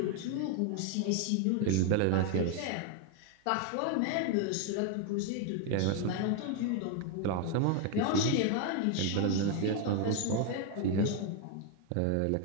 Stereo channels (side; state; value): both; different; correlation 0.01